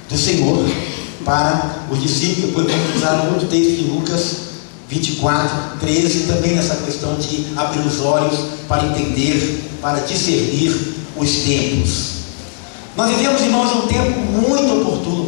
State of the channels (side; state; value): right; silent; digital silence